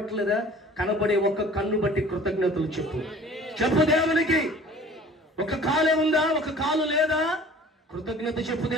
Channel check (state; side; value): normal; both; correlation 0.47